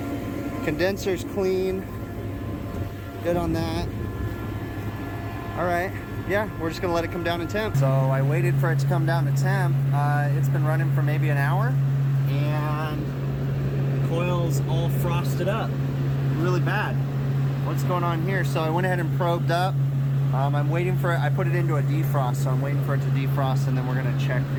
Condenser's clean. Good on that. All right, yeah, we're just gonna let it come down in temp. So I waited for it to come down to temp. It's been running for maybe an hour and the coil's all frosted up really bad. What's going on here? So I went ahead and probed up. I'm waiting for it. I put it into a defrost, so I'm waiting for it to defrost, and then we're gonna check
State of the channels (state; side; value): identical; both; correlation 1.00